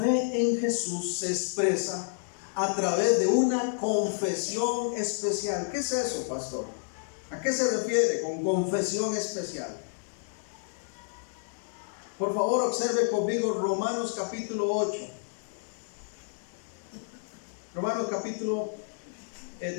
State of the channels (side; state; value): right; silent; digital silence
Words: en Jesús se expresa a través de una confesión especial. ¿Qué es eso, pastor? ¿A qué se refiere con confesión especial? Por favor, observe conmigo Romanos capítulo 8. Romanos capítulo